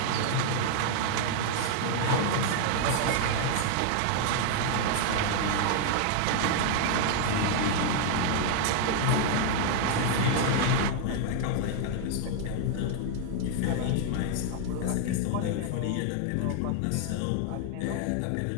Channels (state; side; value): different; both; correlation 0.00